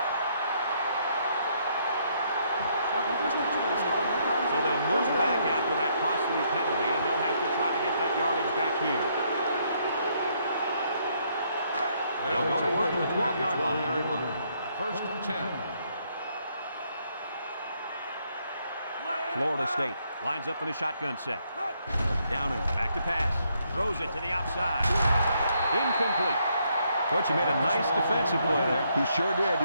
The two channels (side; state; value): both; inverted; correlation -0.72